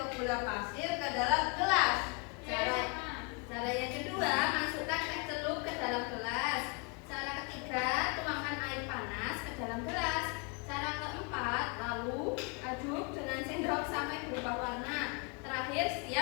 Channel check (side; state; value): right; quieter; 33.4 dB